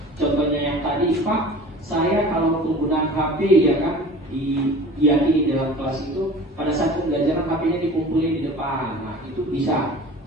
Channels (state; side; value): normal; both; correlation 0.41